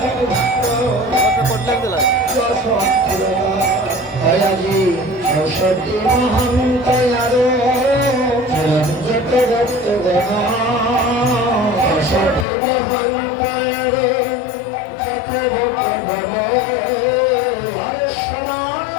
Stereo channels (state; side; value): drops out; right; at 12.5 s